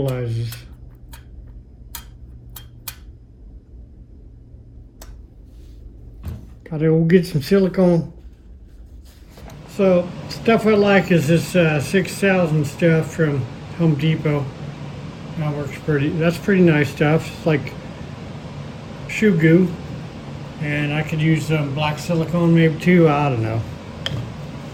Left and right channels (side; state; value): both; identical; correlation 1.00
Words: Gotta go get some silicone. So stuff I like is this 6000 stuff from Home Depot. That works that's pretty nice stuff. It's like shoe goo. And I could use some black silicone maybe too, I don't know.